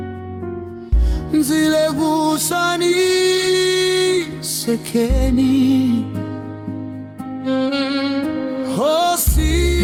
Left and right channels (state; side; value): identical; both; correlation 1.00